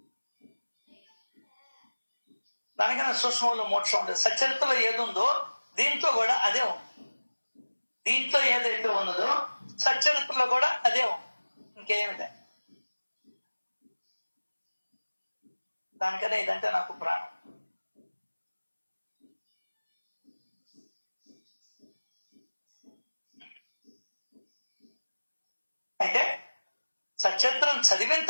దానికన్నా సూక్ష్మంలో మోక్షం ఉండదు. సచరిత్రలో ఏది ఉందో దీంట్లో కూడా అదే ఉంది. దీంట్లో ఏదైతే ఉన్నదో సచరిత్రలో కూడా అదే ఉంది. ఇంకేమిదే. దానికనే ఇదంటే నాకు ప్రాణం. అయితే సచరిత్రం చదివిన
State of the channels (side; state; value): both; inverted; correlation -1.00